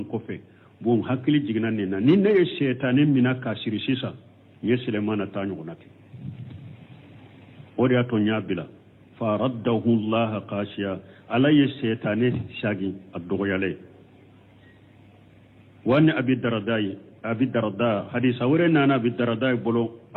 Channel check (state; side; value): identical; both; correlation 1.00